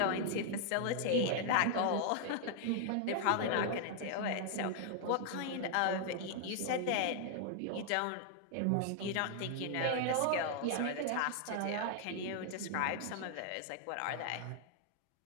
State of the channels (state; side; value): different; both; correlation 0.00